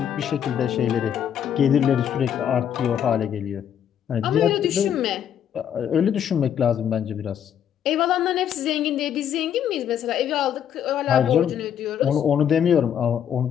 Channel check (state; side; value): quieter; right; 9.2 dB